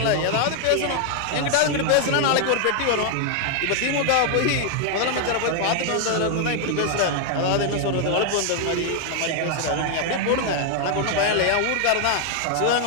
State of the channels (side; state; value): both; different; correlation 0.00